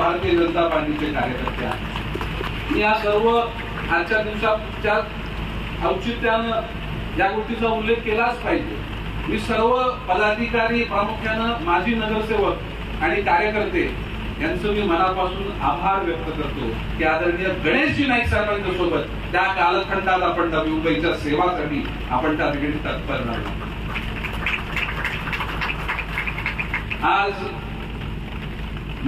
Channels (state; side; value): identical; both; correlation 1.00